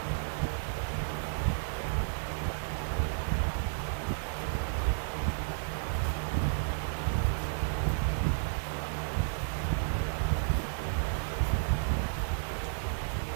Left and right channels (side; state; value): left; silent; digital silence